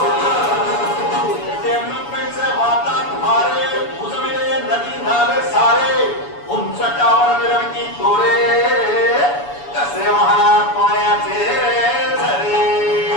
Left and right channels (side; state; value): right; late; 7.0 ms